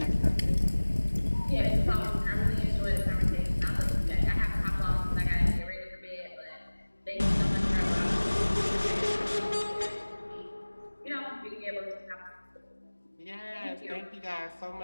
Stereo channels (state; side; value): inverted; both; correlation -1.00